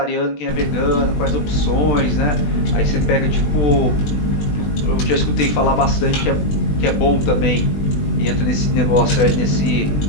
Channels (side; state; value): right; late; 20 ms